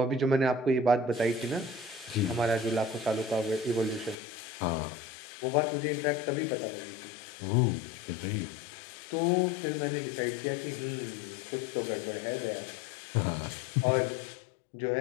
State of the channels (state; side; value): drops out; right; at 4.2 s